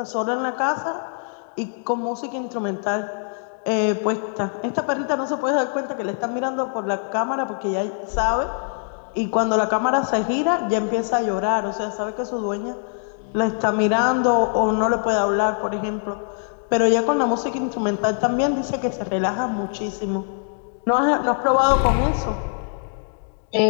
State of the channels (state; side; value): silent; right; 59 dB below the other